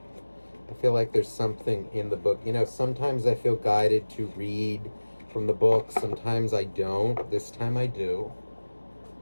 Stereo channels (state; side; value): inverted; both; correlation -1.00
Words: I feel like there's something in the book. You know, sometimes I feel guided to read from the book. Sometimes I don't. This time I do.